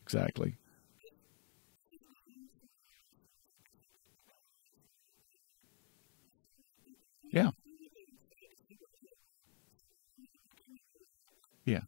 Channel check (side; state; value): right; silent; digital silence